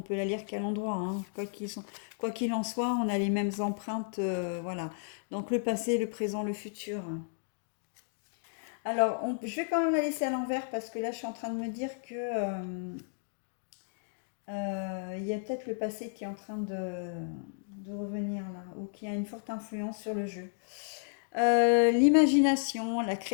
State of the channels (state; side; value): silent; right; digital silence